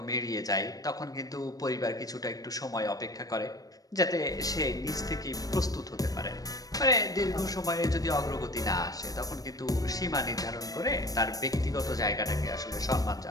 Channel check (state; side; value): late; right; 0.18 ms